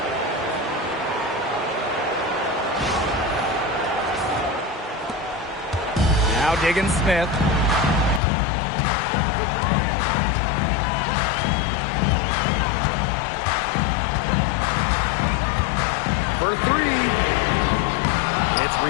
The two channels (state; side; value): drops out; right; at 8.2 s